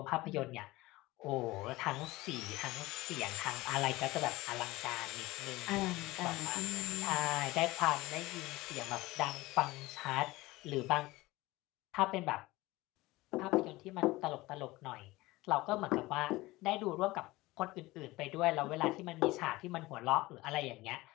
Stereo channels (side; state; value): right; quieter; 19.8 dB